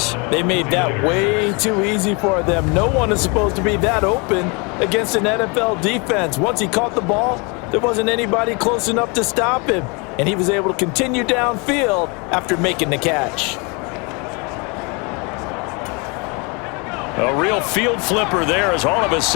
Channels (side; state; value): right; quieter; 30.8 dB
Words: They made that way too easy for them. No one is supposed to be that open against an NFL defense. Once he caught the ball, there wasn't anybody close enough to stop him. And he was able to continue downfield after making the catch. A real field flipper there, as all of a